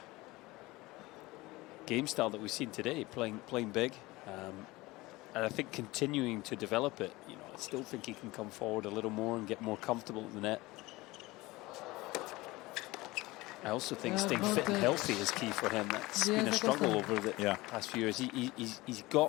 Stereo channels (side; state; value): right; quieter; 20.6 dB